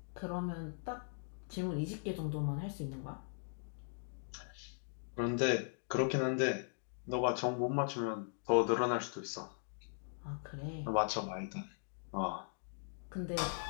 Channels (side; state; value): right; silent; digital silence